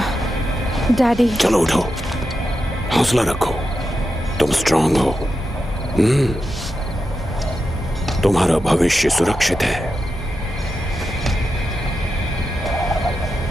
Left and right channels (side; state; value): both; normal; correlation 0.88